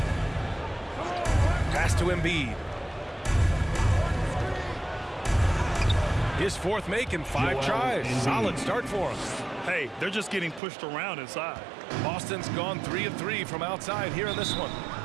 Pass to Embiid. His fourth make in 5 tries. Solid start for him. Hey, they're just getting pushed around inside. Boston's gone 3 of 3 from outside here in this one.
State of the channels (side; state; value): left; drops out; at 10.6 s